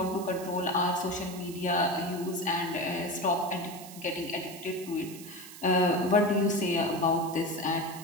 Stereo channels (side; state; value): right; noise; hiss, 15 dB below the sound